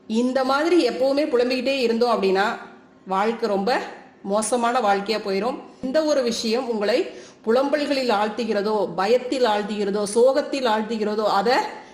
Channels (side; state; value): both; identical; correlation 1.00